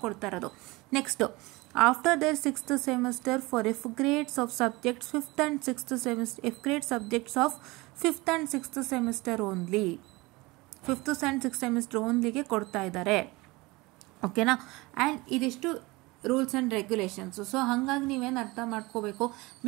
ಕೊಡ್ತಾ ಇರೋದು. Next, after their sixth semester for F grades of subjects fifth and sixth semester, F grade subjects of fifth and sixth semester only, fifth and sixth semester ಓನ್ಲಿಗೆ ಕೊಡ್ತಾ ಇದ್ದಾರೆ. ಓಕೆನಾ? And ಇದಿಷ್ಟು rules and regulations. So ಹಾಗಾಗಿ ನೀವೇನು ಅರ್ಥ ಮಾಡ್ಕೋಬೇಕು,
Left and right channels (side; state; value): left; quieter; 22.7 dB